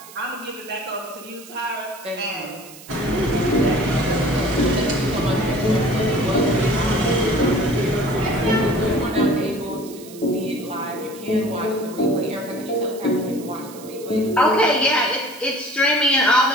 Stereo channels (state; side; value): noise; right; hiss, 18 dB below the sound